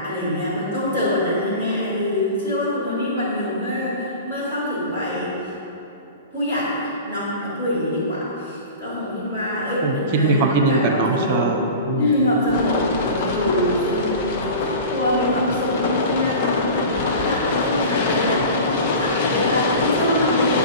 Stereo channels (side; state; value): both; inverted; correlation -0.35